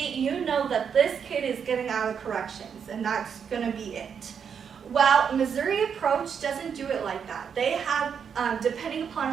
you know that this kid is getting out of corrections, and that's going to be it. Well, Missouri approach doesn't do it like that. They have, depending upon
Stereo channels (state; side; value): quieter; left; 7.1 dB